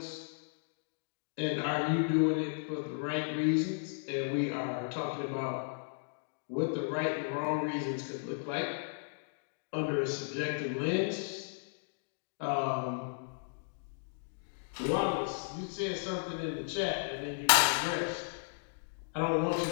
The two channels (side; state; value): right; silent; digital silence